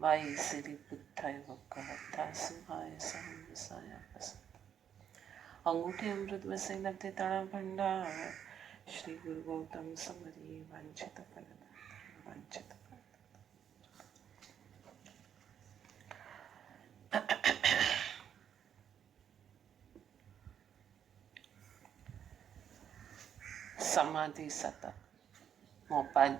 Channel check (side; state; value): left; quieter; 8.8 dB